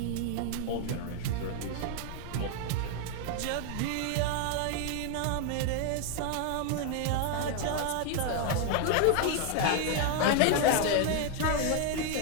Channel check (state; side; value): different; both; correlation 0.00